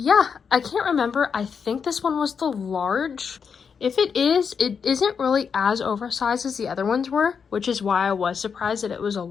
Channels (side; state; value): right; quieter; 6.3 dB